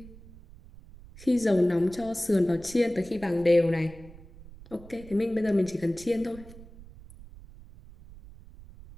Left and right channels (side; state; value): right; noise; rumble, 19 dB below the sound